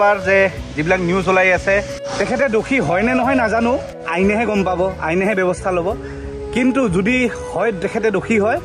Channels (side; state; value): both; identical; correlation 1.00